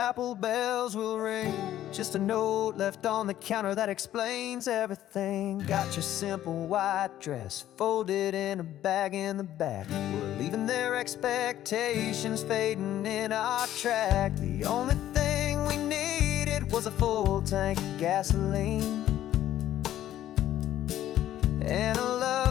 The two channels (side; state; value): right; quieter; 12.5 dB